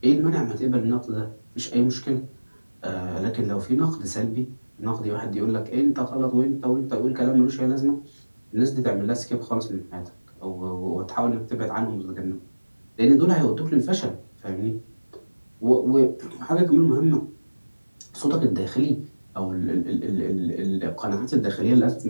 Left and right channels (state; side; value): inverted; both; correlation -1.00